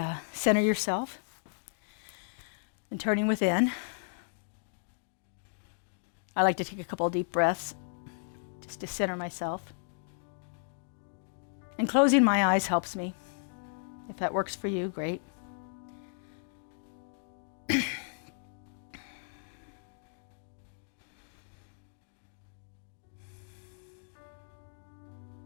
center yourself and turning within. I like to take a couple of deep breaths just to center myself. And closing my eyes helps me. If that works for you, great.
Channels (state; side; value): silent; right; digital silence